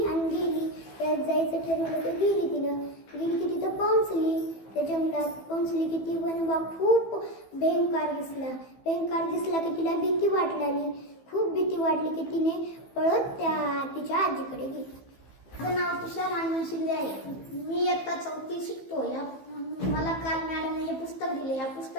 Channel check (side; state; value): right; late; 15 ms